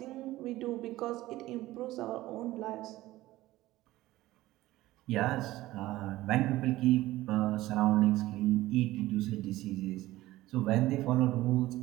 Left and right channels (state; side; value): quieter; left; 16.8 dB